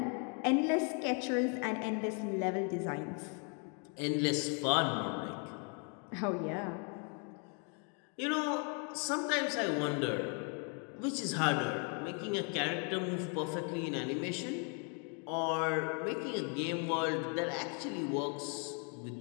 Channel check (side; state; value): right; quieter; 39.0 dB